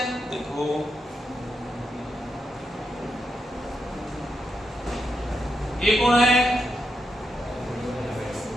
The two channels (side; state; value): both; normal; correlation 0.84